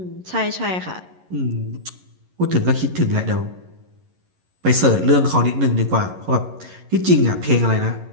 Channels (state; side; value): late; left; 11 ms